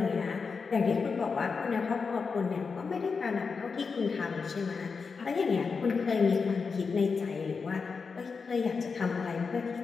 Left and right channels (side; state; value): right; quieter; 5.1 dB